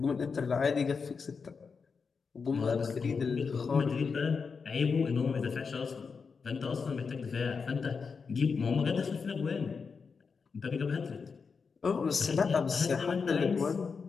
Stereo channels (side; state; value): right; quieter; 5.3 dB